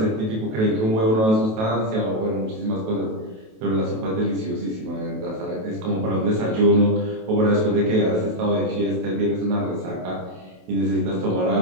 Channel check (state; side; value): late; left; 28 ms